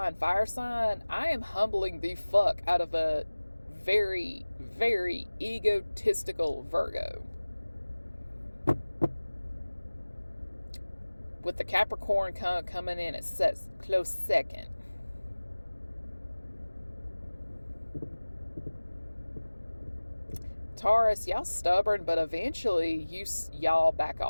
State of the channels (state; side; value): inverted; both; correlation -1.00